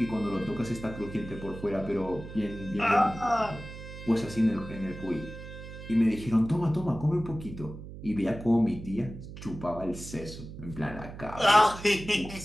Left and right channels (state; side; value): noise; right; hum, 12 dB below the sound